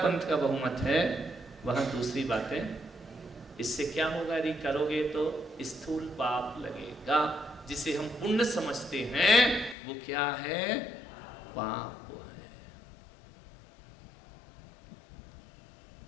का बहुमत है वहाँ दूसरी बातें। इससे क्या होगा? यदि करोगे तो स्थूल पाप लगेगा, जिसे हम पुण्य समझते हैं वो क्या है? पाप है।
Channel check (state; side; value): drops out; right; at 9.8 s